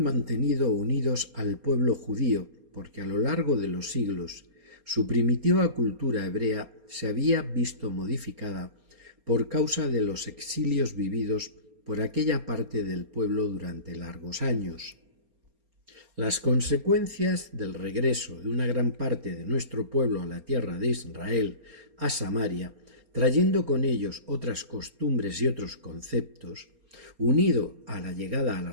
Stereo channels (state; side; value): late; left; 4.3 ms